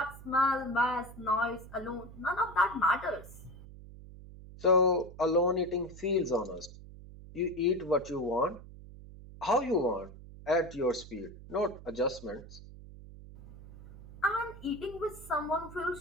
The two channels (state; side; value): noise; right; hum, 16 dB below the sound